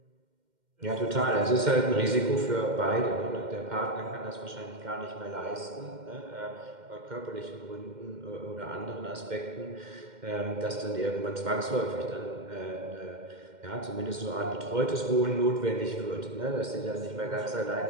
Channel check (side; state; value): left; late; 2.1 ms